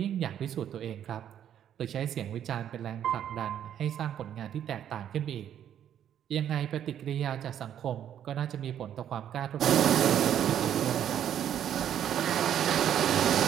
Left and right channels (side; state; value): left; quieter; 10.0 dB